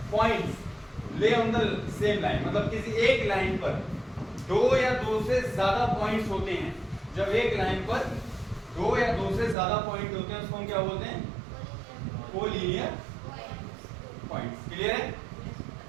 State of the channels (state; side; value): drops out; left; at 9.6 s